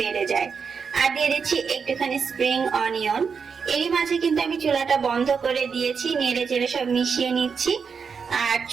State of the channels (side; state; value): left; quieter; 5.9 dB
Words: যায়। আর দিয়ে দিচ্ছি একটুখানি স্প্রিং অনিয়ন। এরই মাঝে কিন্তু আমি চুলাটা বন্ধ করে দিয়েছি, নেড়ে চেড়ে সব মিশিয়ে নিচ্ছি। আর